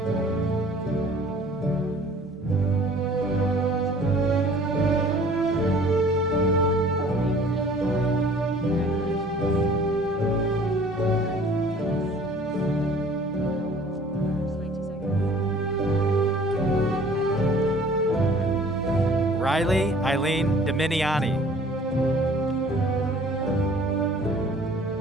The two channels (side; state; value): both; normal; correlation 0.52